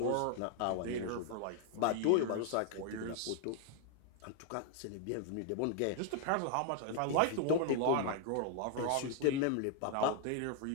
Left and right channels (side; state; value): both; different; correlation 0.00